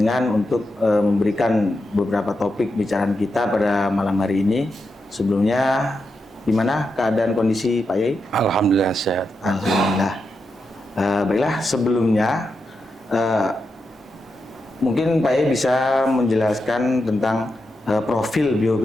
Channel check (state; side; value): normal; both; correlation 0.87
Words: untuk memberikan beberapa topik bicaraan kita pada malam hari ini. Sebelumnya, gimana keadaan kondisi Pak Kiai? Alhamdulillah sehat. Alhamdulillah. Baiklah, sebelumnya mungkin Pak Kiai bisa menjelaskan tentang profil